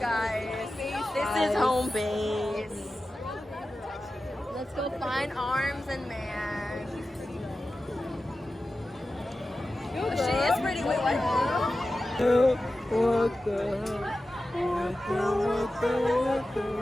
This is home base. Let's go find Arms and Man. Oh, she is pretty. Wait, what?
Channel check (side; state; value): both; normal; correlation 0.94